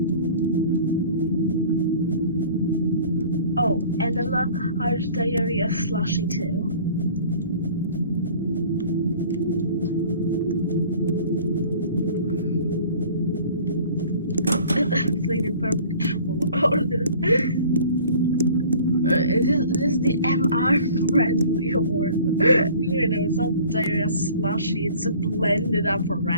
Oh, and a large diarrhea slushy too. It's like the perfect order. This is the MR friendly order. You know, it's not diarrhea slushy, it's a blended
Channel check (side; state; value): both; inverted; correlation -0.48